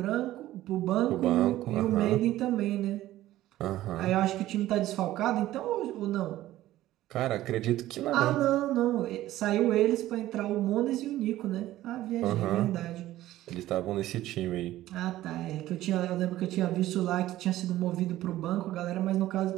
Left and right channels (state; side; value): quieter; left; 14.9 dB